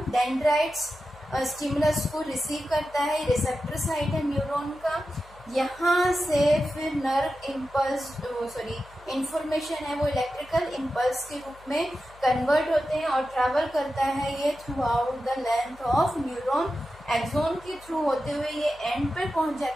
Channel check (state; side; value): noise; left; hum, 23 dB below the sound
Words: डेंड्राइट्स स्टिमुलस को रिसीव करता है, रिसेप्टर साइट है न्यूरॉन का। यहाँ से फिर नर्व इम्पल्स इंफॉर्मेशन है वो इलेक्ट्रिकल इम्पल्स के रूप में कन्वर्ट होते हैं और ट्रैवल करता है ये throughout the length of neuron. Axon के थ्रू होते हुए ये एंड पे पहुंच